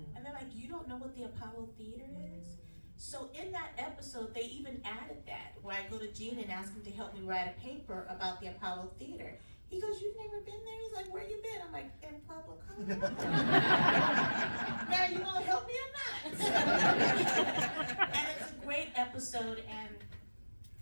they're like, you don't know what the Apollo Theater is? So in that episode, they even added that, where I go to Gene and ask him to help me write a paper about the Apollo Theater. He goes, you've never been there? He's like, where you been? I'm like, in Pueblo, Colorado. Now, you gonna help me or not? And it's a great episode, and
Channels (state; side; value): inverted; both; correlation -1.00